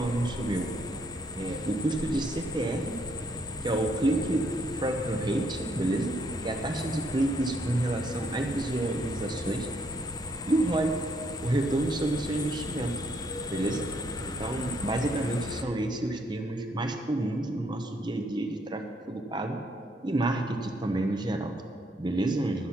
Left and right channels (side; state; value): both; normal; correlation 0.71